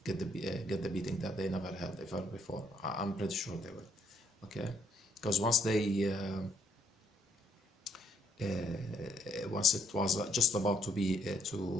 the beating that they never had ever before. I'm pretty sure they will. Okay, because once it was just about to be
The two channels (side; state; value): both; normal; correlation 0.70